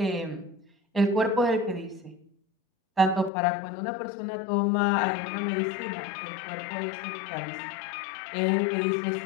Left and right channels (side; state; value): right; drops out; at 3.3 s